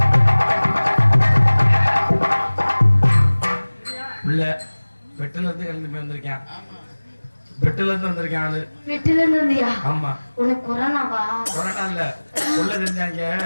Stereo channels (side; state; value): both; inverted; correlation -1.00